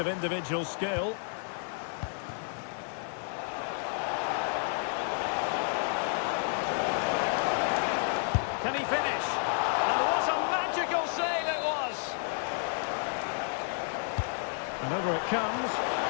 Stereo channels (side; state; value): right; silent; 57 dB below the other